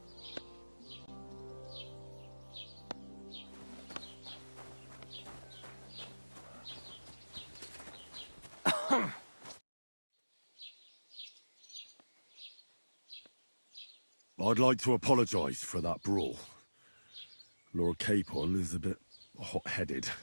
I'd like to apologise for that brawl. Lord Capon is a bit hot-headed.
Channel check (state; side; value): inverted; both; correlation -1.00